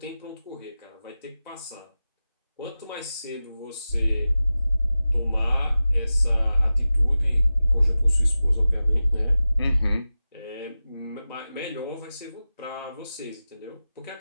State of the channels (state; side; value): inverted; both; correlation -0.95